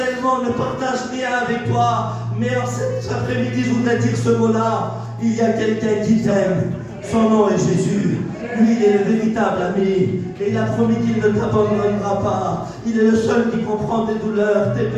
ne partage rien avec toi. Mais en cet après-midi, je voudrais dire ce mot-là. Il y a quelqu'un qui t'aime. Son nom est Jésus. Lui, il est le véritable ami. Et il a promis qu'il ne t'abandonnera pas. Il est le seul qui comprend tes douleurs, tes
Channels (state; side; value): identical; both; correlation 1.00